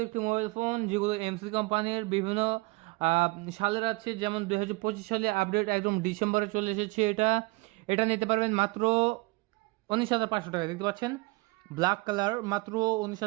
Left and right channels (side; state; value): left; quieter; 24.9 dB